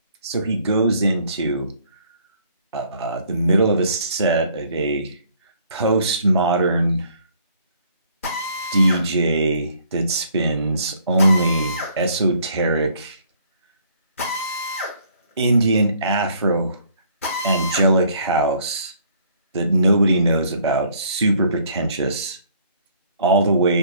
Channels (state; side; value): inverted; both; correlation -0.61